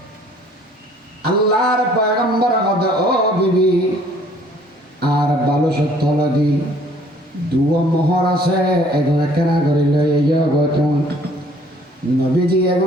আল্লাহর পয়গম্বর হদে ও বিবি আর ভালো সত্য লাগি দুয়া মোহর আছে এখন কেনা করে লই ইয়ে গতন নবীজি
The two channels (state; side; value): normal; both; correlation 0.57